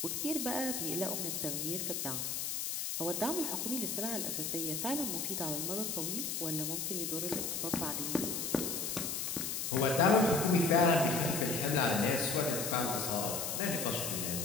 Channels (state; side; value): noise; left; hiss, 2 dB below the sound